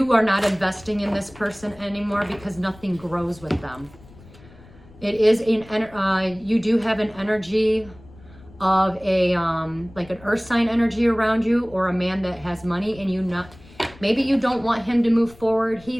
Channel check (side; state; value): left; noise; rumble, 22 dB below the sound